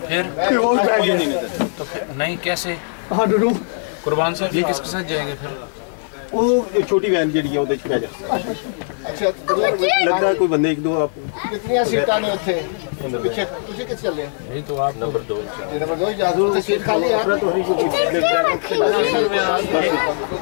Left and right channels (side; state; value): right; silent; digital silence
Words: نہیں کیسے قربان صاحب یہ کس کے ساتھ جائیں گے پھر؟ وہ چھوٹی وین جڑی ہے وہ پہ جا اچھا لگتا ہے کوئی بندے ایک دو آپ کتنی سیٹاں نے اتنے پیچھے تسی کس چلے؟ نہیں تو آپ نمبر 2 نمبر 2 اجازت تے سیٹ خالی ہے